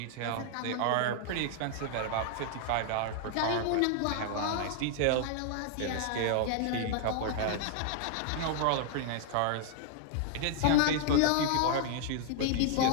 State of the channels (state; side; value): different; both; correlation -0.01